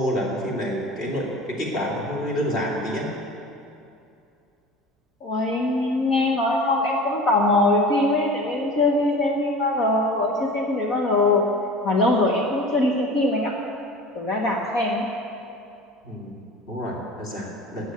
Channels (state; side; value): normal; both; correlation 0.38